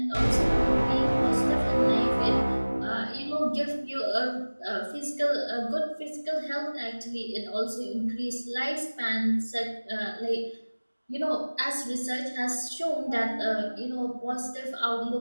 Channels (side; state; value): both; inverted; correlation -1.00